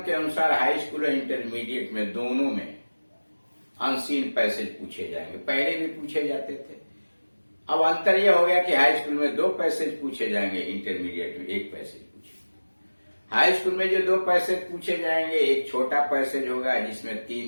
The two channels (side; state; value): both; inverted; correlation -1.00